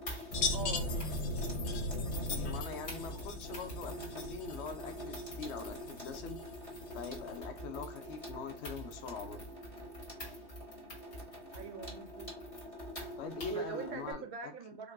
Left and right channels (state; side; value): late; right; 3.2 ms